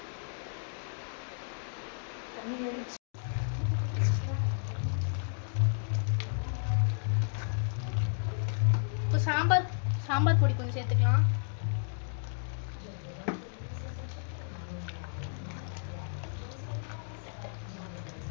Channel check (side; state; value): right; silent; digital silence